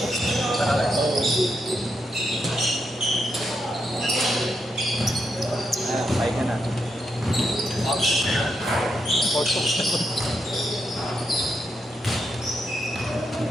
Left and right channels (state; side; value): normal; both; correlation 0.82